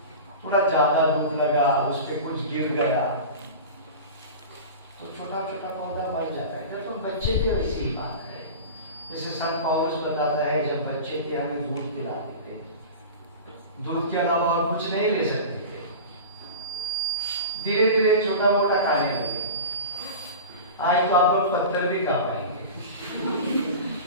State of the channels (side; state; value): both; inverted; correlation -0.32